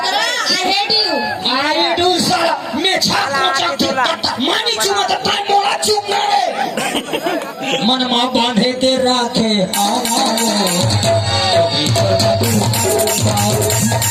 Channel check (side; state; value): both; identical; correlation 1.00